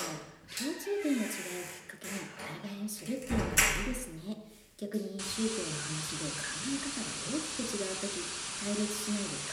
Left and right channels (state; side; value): identical; both; correlation 1.00